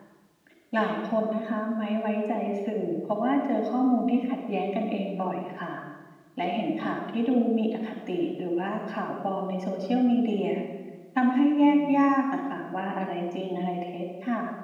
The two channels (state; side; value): identical; both; correlation 1.00